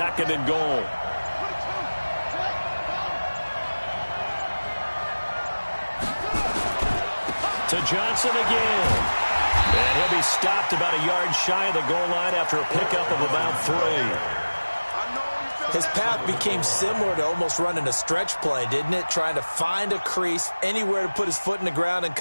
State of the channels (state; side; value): inverted; both; correlation -1.00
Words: and goal. To Johnson again. And he'll be stopped about a yard shy of the goal line after a pickup of about 3. His path became similar to almost running a stretch play, didn't it? Trying to find a crease, anywhere to put his foot in the ground and